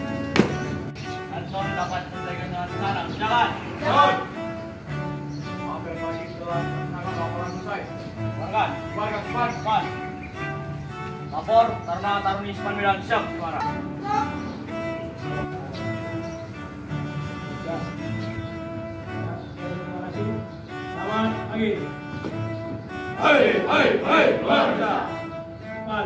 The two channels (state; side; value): identical; both; correlation 1.00